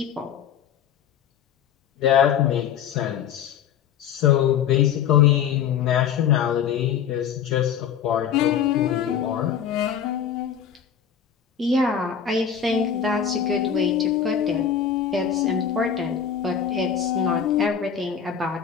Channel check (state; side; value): quieter; right; 8.2 dB